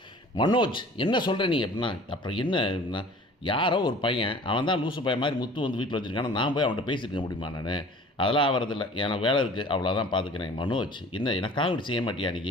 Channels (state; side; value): normal; both; correlation 0.46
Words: மனோஜ் என்ன சொல்கிற நீ அப்படின்னா, அப்புறம் என்ன யாரோ ஒரு பையன், அவன் தான் லூசு பையன் மாதிரி முத்து வந்து வீட்டில் வச்சுருக்கான, நான் போய் அவன்கிட்ட பேசியிருக்க முடியுமா நான், அதெல்லாம் ஆகிறதில்ல, எனக்கு வேலை இருக்குது, அவ்வளோதான் பார்த்துக்கிறேன். மனோஜ் என்ன எனக்காக இப்படி செய்ய மாட்டியா,